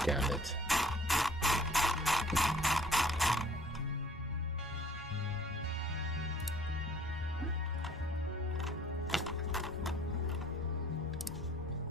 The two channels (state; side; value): normal; both; correlation 0.55